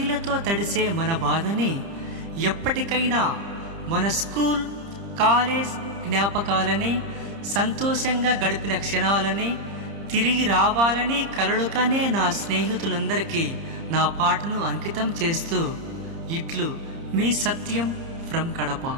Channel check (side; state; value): left; late; 30 ms